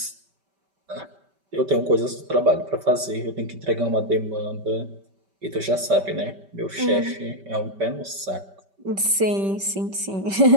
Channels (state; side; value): late; left; 5.2 ms